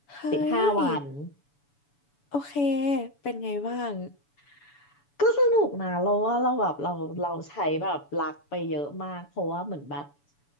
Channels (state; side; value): late; right; 7.0 ms